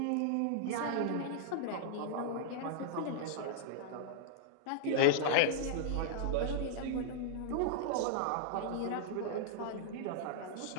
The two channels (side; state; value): both; different; correlation -0.01